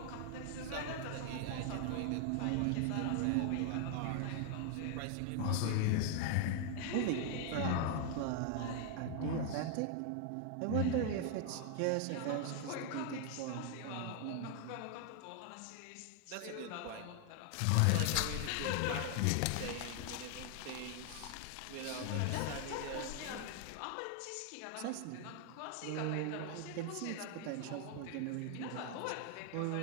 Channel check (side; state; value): both; different; correlation 0.00